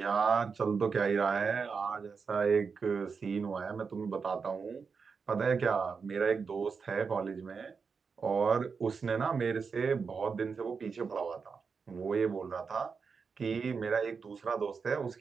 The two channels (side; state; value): left; quieter; 5.4 dB